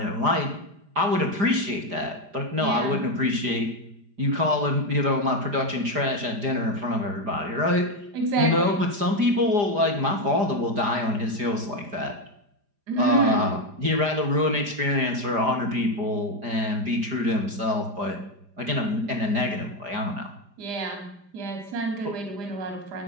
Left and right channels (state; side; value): late; left; 4.9 ms